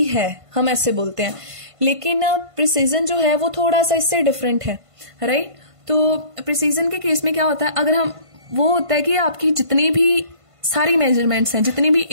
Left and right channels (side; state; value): left; late; 1.5 ms